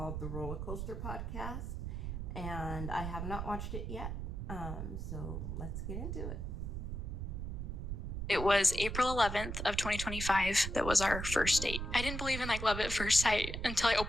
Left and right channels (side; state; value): right; noise; rumble, 4 dB below the sound